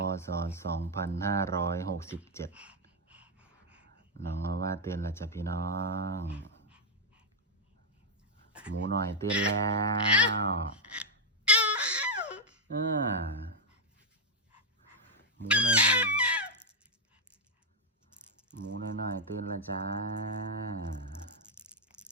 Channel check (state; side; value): normal; both; correlation 0.00